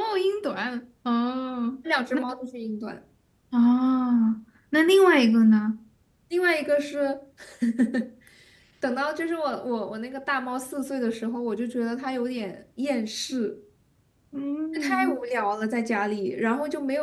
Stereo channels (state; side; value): identical; both; correlation 1.00